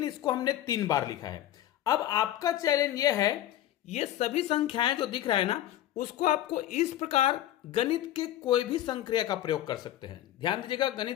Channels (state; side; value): quieter; right; 13.0 dB